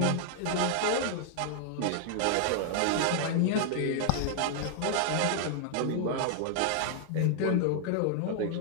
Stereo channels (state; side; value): different; both; correlation 0.00